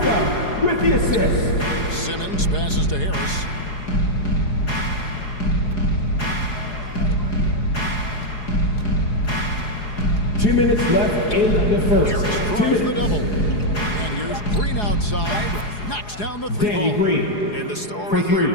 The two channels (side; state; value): right; late; 4.8 ms